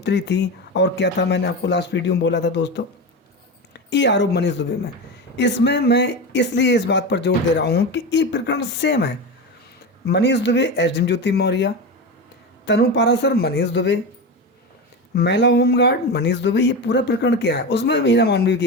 थी और क्या था, मैंने आपको लास्ट वीडियो में बोला था दोस्तों। ये आरोप मनीष दुबे में, इसमें मैं इसलिए इस बात पर जोर दे रहा हूँ कि ये प्रकरण सेम है। मनीष दुबे, एसडीएम ज्योति मौर्य, तनु पाराशर, मनीष दुबे, महिला होमगार्ड, मनीष दुबे, ये पूरा प्रकरण क्या है? उसमें बीना मानवी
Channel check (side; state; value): both; normal; correlation 0.21